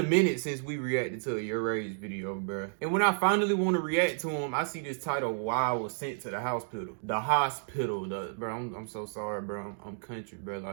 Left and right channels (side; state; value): left; silent; digital silence